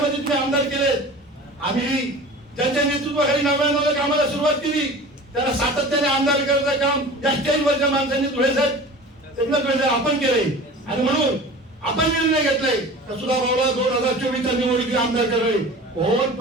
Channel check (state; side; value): normal; both; correlation 0.39